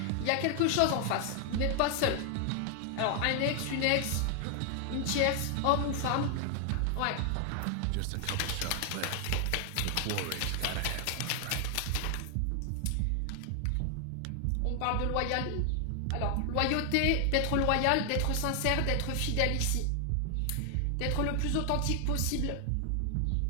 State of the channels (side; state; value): both; different; correlation 0.00